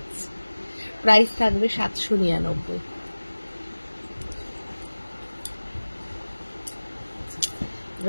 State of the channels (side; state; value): both; inverted; correlation -1.00